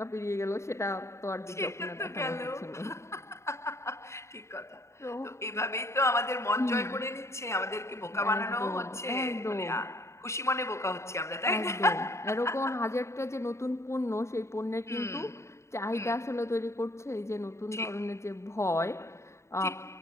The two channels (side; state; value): right; late; 0.14 ms